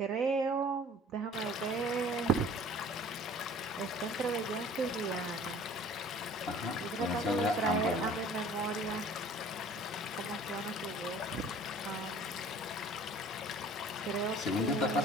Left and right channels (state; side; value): normal; both; correlation 0.49